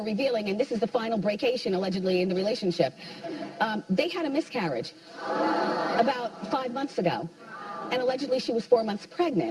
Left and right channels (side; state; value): both; identical; correlation 1.00